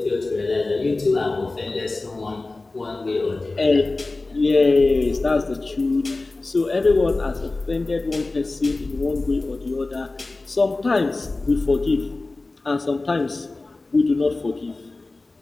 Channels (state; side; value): quieter; right; 3.3 dB